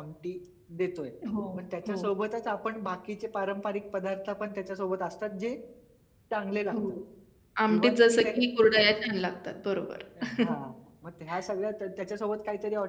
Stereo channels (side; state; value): both; identical; correlation 1.00